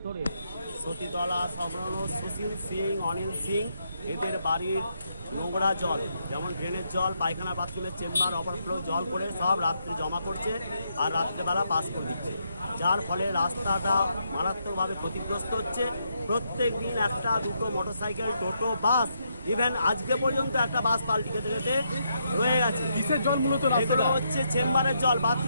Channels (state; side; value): inverted; both; correlation -0.78